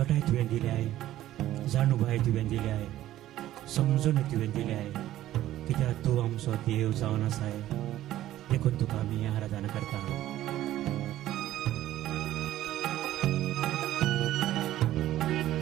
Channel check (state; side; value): quieter; left; 13.8 dB